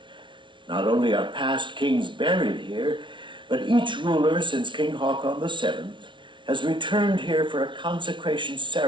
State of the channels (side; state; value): left; late; 0.24 ms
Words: Not only are past kings buried here, but each ruler since King Haakon VII has returned here for a consecration